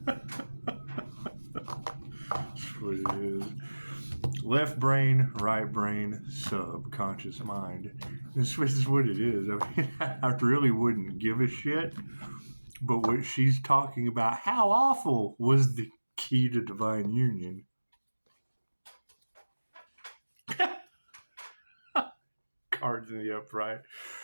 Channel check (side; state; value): both; inverted; correlation -1.00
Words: That's what it is. Left brain, right brain, subconscious mind. This is what it is. I mean, I really wouldn't give a shit. But what she's talking about, how awful was the key to divine union? Cards in the upright.